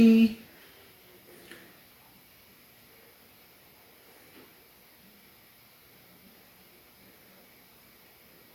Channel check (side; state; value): both; identical; correlation 1.00